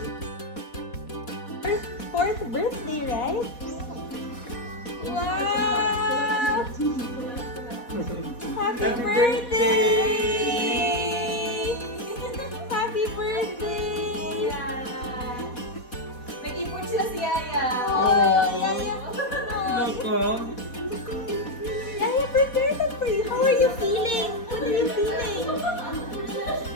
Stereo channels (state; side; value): late; right; 4.2 ms